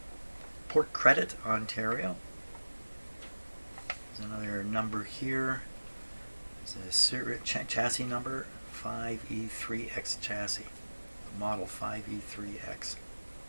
Port Credit, Ontario. There's another number here. There's a chassis number, 5E3X chassis. Model 5E3X.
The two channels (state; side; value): inverted; both; correlation -1.00